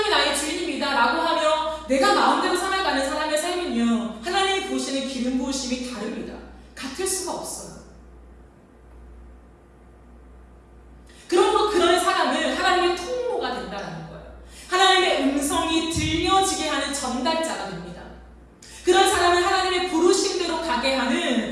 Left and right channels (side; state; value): both; identical; correlation 1.00